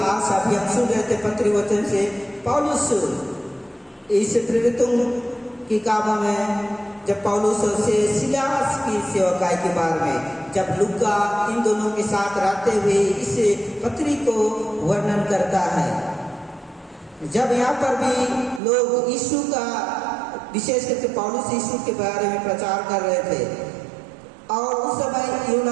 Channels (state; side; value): drops out; left; at 18.6 s